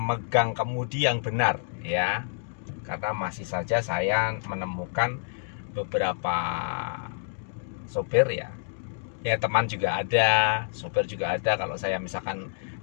kemudi yang benar, ya. Karena masih saja saya menemukan beberapa sopir, ya teman juga ada, sopir juga ada. Kalau saya misalkan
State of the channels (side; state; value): right; silent; digital silence